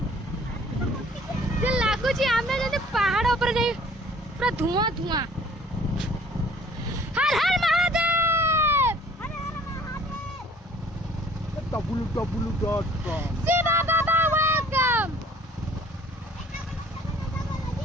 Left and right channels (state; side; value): normal; both; correlation 0.53